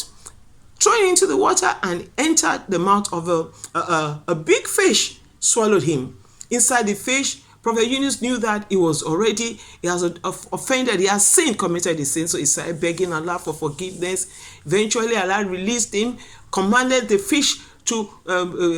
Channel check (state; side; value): identical; both; correlation 1.00